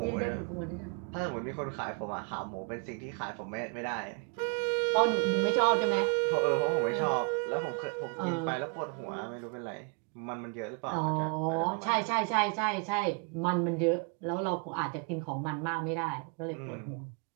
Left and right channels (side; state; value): left; quieter; 37.1 dB